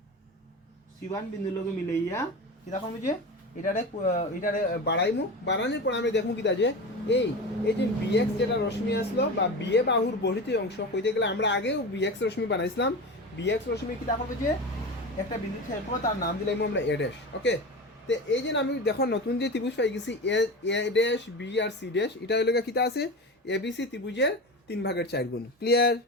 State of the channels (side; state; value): both; normal; correlation 0.27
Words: C1 বিন্দুর লগে মিলাইয়া কি দেখো যে এটারে বাড়াইমু বাড়ানোর পর আমি দেখমু কিটা যে এই যে bx যেটা রশ্মি আসলো বা বিএ বাহুর বর্ধিত অংশ কইতে গেলে আমরা আগেও bx রশ্মি বানাইছিলাম bx রশ্মি কি দেখো যে একটা বিন্দু ছেদ করব তার নাম দিলাইমু আমরা a ড্যাশ ওকে তো এই যে আমি দেখো নতুন যে ত্রিভুজ পাই গেছি a ড্যাশ b আর c ড্যাশ এটা হইলো কিটা আছে abc ত্রিভুজের 3/4 গুণ ক্লিয়ার